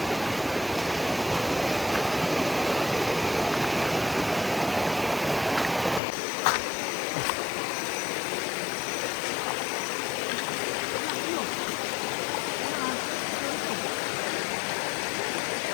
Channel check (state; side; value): drops out; right; at 6.0 s